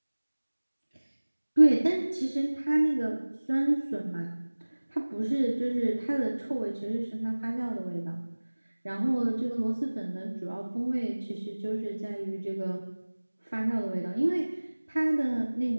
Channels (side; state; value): both; inverted; correlation -1.00